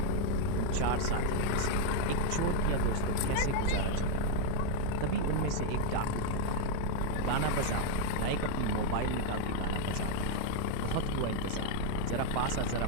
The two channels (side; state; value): both; different; correlation 0.01